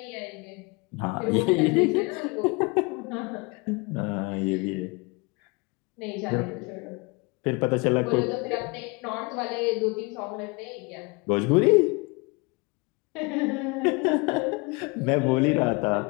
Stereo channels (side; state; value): right; quieter; 28.5 dB